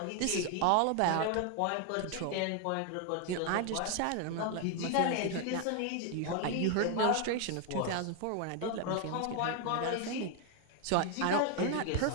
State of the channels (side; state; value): both; different; correlation 0.01